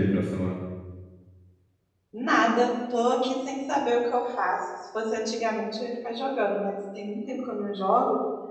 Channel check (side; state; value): both; identical; correlation 1.00